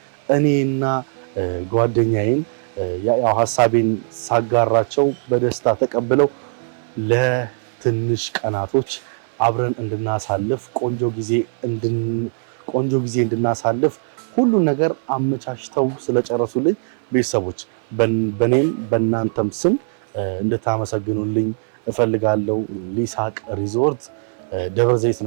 እኔና ጓደኛዬን ያው ሐሳቤን ሳጋራቸው በደስታ ተቀብለው ለትንሽ ቀናቶች አብረን እንድናሳልፍ ቆንጆ ጊዜ እንድናሳልፍ ሁሉ ነገር አመቻችተው ስለጨረሱልኝ ቤተሰቦች በኔም በእናንተም ስም እንድታመሰግኑልኝ እፈልጋለሁ። ሊሳቅ ሪዞርት ደብረ ዘይት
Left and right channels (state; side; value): silent; left; 60 dB below the other